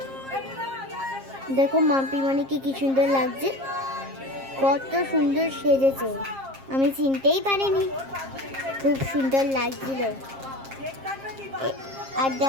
দেখো মাম্পি মানিকে কি সুন্দর লাগছে, কত সুন্দর সেজেছে, আমি চিনতেই পারিনি, খুব সুন্দর লাগছিল। আর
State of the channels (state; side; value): late; left; 7.5 ms